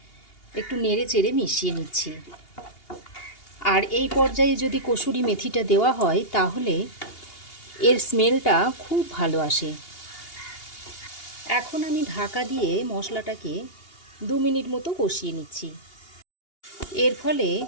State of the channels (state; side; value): late; right; 2.8 ms